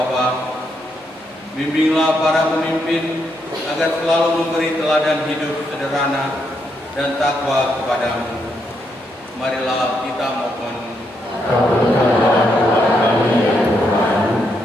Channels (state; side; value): normal; both; correlation 0.78